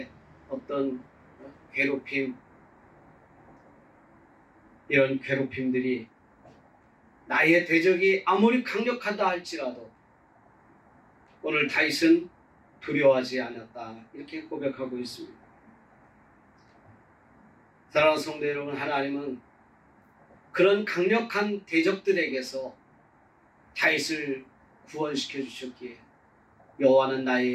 어떤 괴롭힘, 이런 괴롭힘들이 나의 대적이 아무리 강력하다 할지라도 오늘 다윗은 두려워하지 않았다 이렇게 고백하고 있습니다. 사랑하는 성도 여러분, 하나님은 그런 강력한 대적들에게서 다윗을 구원시켜 주셨기에 여호와는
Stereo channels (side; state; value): both; identical; correlation 1.00